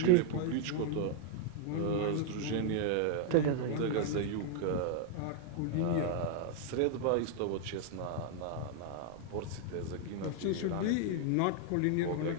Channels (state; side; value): different; both; correlation 0.00